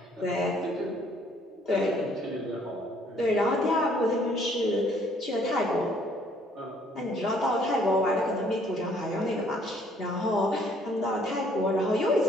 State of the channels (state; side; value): normal; both; correlation 0.62